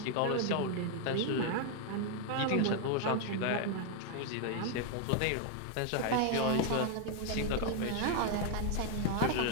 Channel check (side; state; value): both; different; correlation 0.00